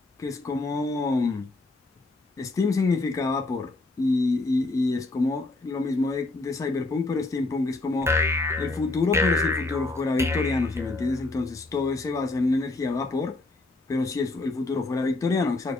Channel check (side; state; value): right; quieter; 3.0 dB